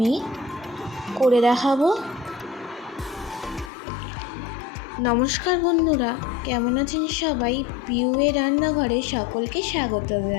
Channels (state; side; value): drops out; right; at 3.7 s